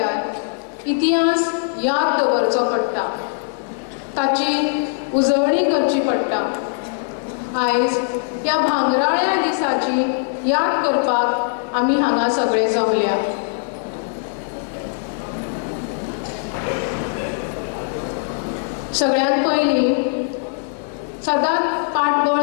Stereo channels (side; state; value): right; silent; digital silence